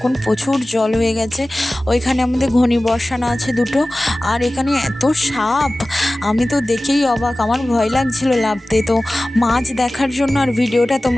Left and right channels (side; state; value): both; normal; correlation 0.97